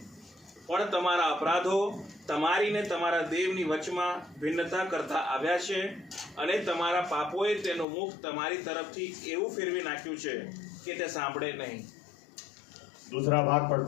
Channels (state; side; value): drops out; right; at 7.9 s